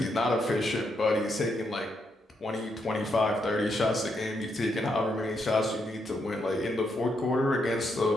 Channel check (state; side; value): normal; both; correlation 0.79